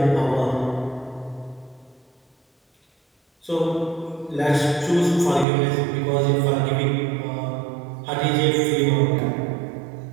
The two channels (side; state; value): left; drops out; at 5.5 s